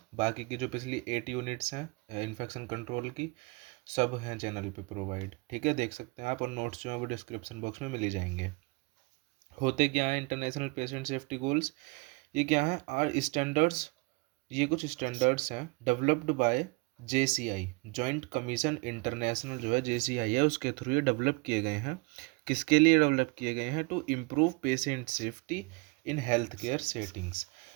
बाकी की जो पिछली 8 यूनिट्स हैं इन्फेक्शन कंट्रोल की, सब हैं चैनल पे प्रोवाइड। ठीक है, देख सकते हैं आप, और नोट्स जो हैं वो डिस्क्रिप्शन बॉक्स में मिल ही जाएंगे। होते क्या है इंटरनेशनल पेशेंट सेफ्टी गोल्स, ये क्या है, आर स्टैंडर्ड्स, ये कुछ स्टैंडर्ड्स हैं developed by JCI, joint commission international, जो है JCI है, उसके थ्रू ये डेवलप किए गए हैं। किसके लिए डेवलप किए गए हैं? To improve patient safety in health care settings,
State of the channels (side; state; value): left; quieter; 27.6 dB